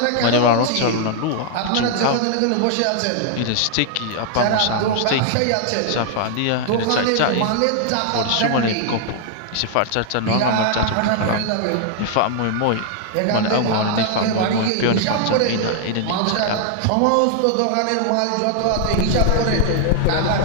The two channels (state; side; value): different; both; correlation 0.00